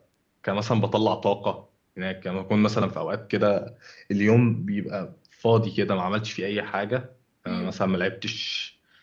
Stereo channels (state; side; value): identical; both; correlation 1.00